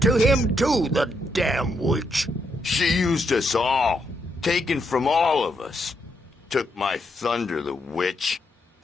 to him too, the damn witch. She used us all. Taken from all of us. Took my thunder, the witch.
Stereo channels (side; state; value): both; normal; correlation 0.78